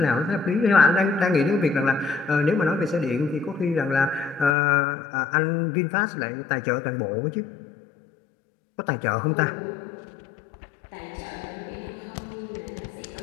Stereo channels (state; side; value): drops out; right; at 4.5 s